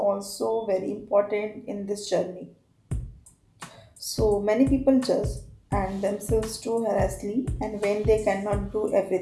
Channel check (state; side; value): identical; both; correlation 1.00